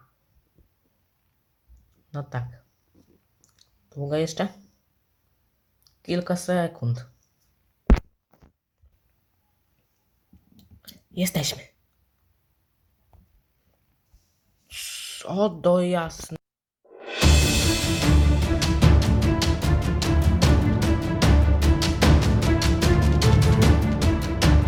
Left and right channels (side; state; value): both; identical; correlation 1.00